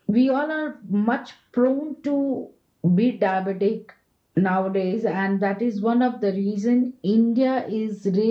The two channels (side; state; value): both; identical; correlation 1.00